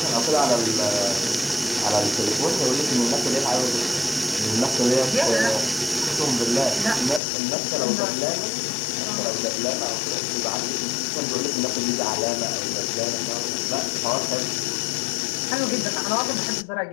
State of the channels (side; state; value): right; drops out; at 7.2 s